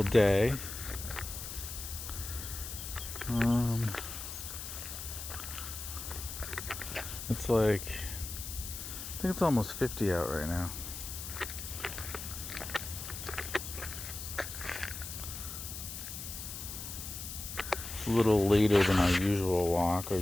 day. Um, it's like, I think it's almost 50 out right now. It's a little later than our usual walk. Our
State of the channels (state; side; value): noise; left; hiss, 8 dB below the sound